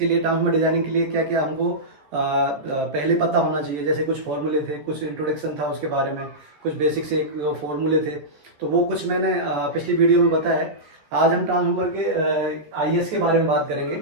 लिए ट्रांसफार्मर डिजाइनिंग के लिए क्या क्या हमको पहले पता होना चाहिए। जैसे कुछ फॉर्मूले थे, कुछ इंट्रोडक्शन था उसके बारे में, कुछ बेसिक से एक फॉर्मूले थे। तो वो कुछ मैंने पिछली वीडियो में बताया है। आज हम ट्रांसफार्मर के आईएस के बारे में बात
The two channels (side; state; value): left; late; 14 ms